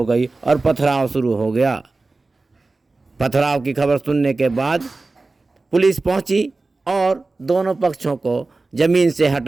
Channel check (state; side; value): quieter; left; 3.5 dB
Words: गई और पथराव शुरू हो गया। पथराव की खबर सुनने के बाद पुलिस पहुंची और दोनों पक्षों को ज़मीन से